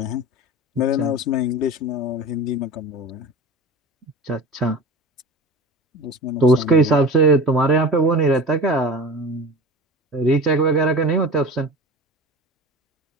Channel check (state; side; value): normal; both; correlation 0.35